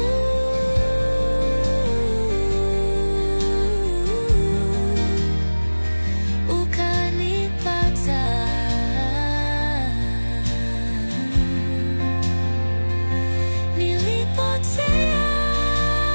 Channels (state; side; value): inverted; both; correlation -1.00